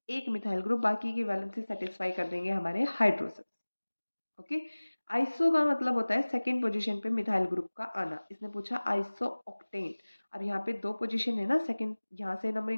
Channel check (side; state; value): both; inverted; correlation -1.00